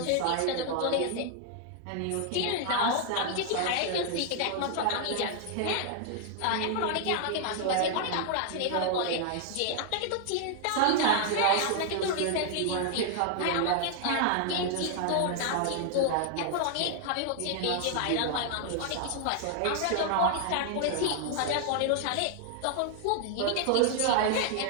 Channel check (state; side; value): different; both; correlation 0.00